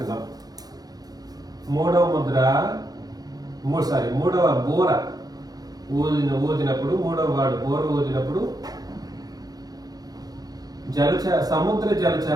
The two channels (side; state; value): left; late; 0.19 ms